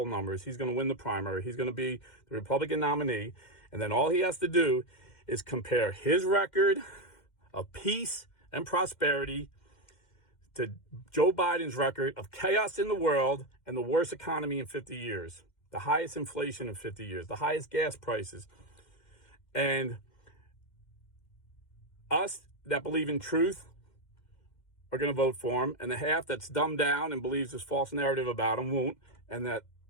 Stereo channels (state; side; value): late; right; 2.1 ms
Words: numbers. He's going to win the primary. He's going to be the Republican nominee. And then all he has to do is compare his record of peace and prosperity to Joe Biden's record of chaos in the world and the worst economy in 50 years, the highest inflation in 50 years, the highest gas prices. And us that believe in truth are going to vote for him, and the half that's dumbed down and believes this false narrative about him won't. And that